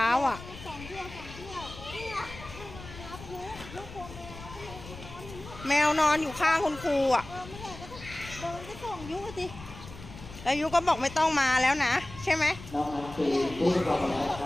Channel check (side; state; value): left; noise; rumble, 15 dB below the sound